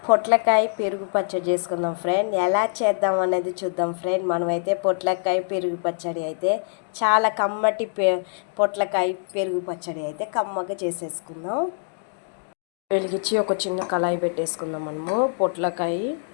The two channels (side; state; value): right; silent; digital silence